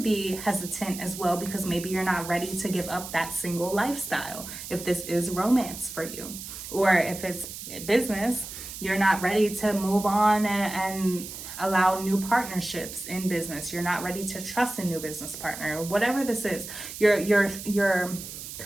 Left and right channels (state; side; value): noise; right; hiss, 10 dB below the sound